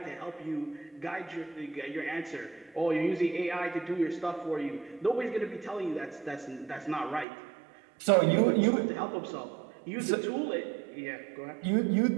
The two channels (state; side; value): drops out; left; at 7.2 s